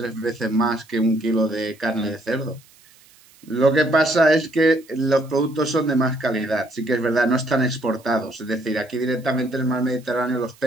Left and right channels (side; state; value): right; noise; hiss, 28 dB below the sound